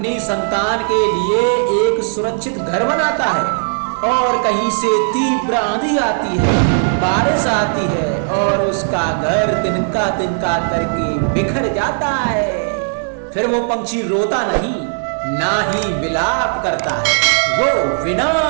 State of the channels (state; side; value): silent; left; 67 dB below the other